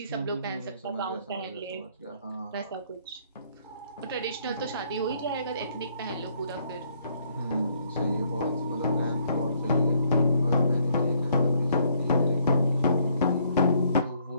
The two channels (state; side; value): inverted; both; correlation -0.67